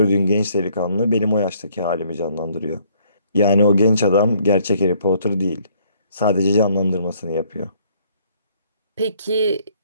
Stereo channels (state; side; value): inverted; both; correlation -0.64